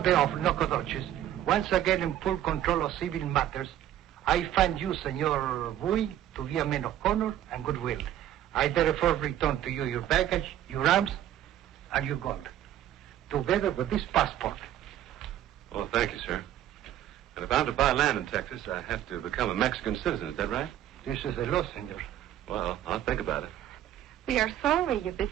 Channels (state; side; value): quieter; left; 11.9 dB